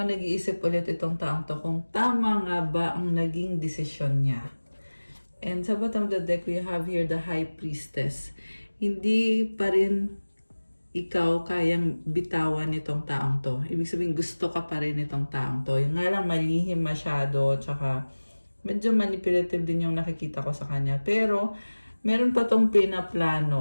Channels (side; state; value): both; inverted; correlation -1.00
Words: nag-iisip ulit itong taong to kung tama nga ba ang naging desisyon niya. And sa bottom of the deck, we have here the High Priestess. Hindi pa rin ikaw kayang bitawan nitong taong to. Ibig sabihin, gusto ka pa rin nitong taong to. Yung nga lang malihim masyado, tsaka medyo manipulative din yung nakikita ko sa kanya. Pero, meron pa tong